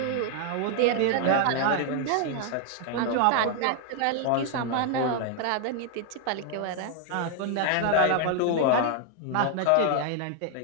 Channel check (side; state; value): both; different; correlation 0.00